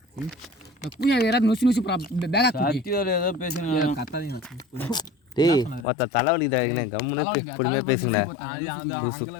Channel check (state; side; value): drops out; right; at 5.9 s